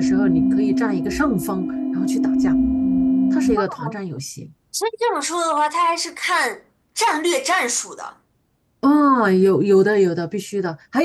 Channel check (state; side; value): identical; both; correlation 1.00